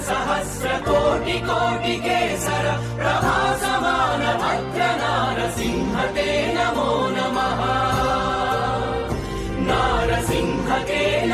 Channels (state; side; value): identical; both; correlation 1.00